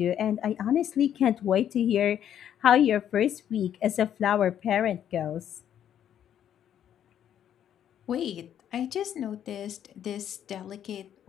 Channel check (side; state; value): right; quieter; 10.0 dB